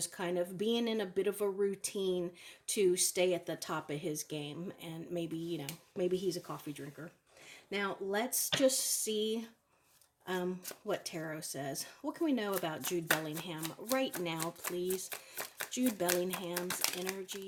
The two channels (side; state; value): both; identical; correlation 1.00